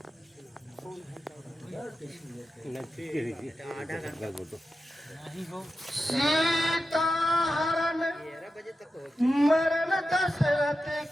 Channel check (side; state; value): both; normal; correlation 0.91